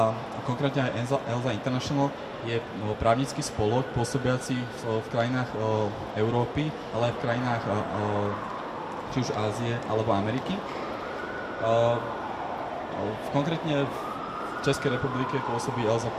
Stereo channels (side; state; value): both; identical; correlation 1.00